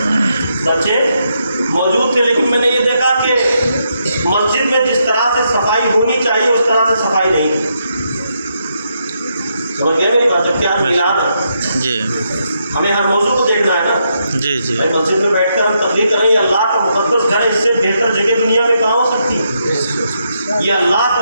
لیکن میں نے یہ دیکھا کہ مسجد میں جس طرح سے صفائی ہونی چاہیے اس طرح سے صفائی نہیں ہے۔ سمجھ گئے میری بات؟ جبکہ ہم میلاد ہے، جی، ہمیں ہر موضوع کو دیکھنا ہے نا۔ جی، جی، بھائی مسجد میں بیٹھ کر ہم تقریر کریں، یہ اللہ کا مقدس گھر ہے، اس سے بہتر جگہ دنیا میں کہاں ہو سکتی ہے؟ یہ اللہ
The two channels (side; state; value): both; inverted; correlation -0.80